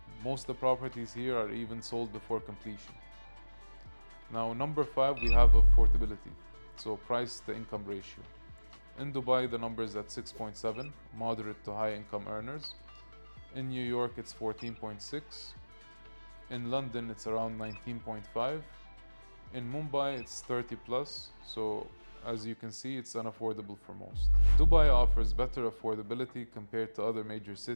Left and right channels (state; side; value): inverted; both; correlation -1.00